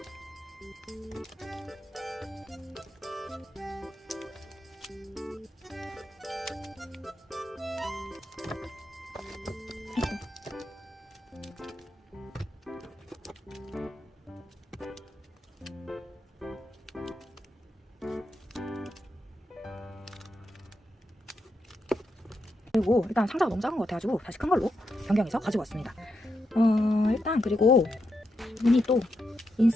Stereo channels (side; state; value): both; normal; correlation 0.84